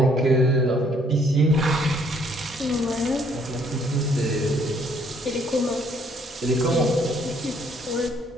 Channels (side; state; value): both; normal; correlation 0.65